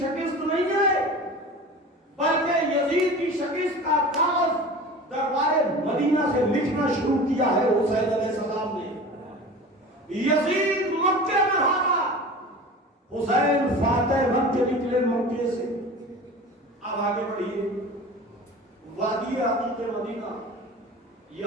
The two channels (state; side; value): normal; both; correlation 0.36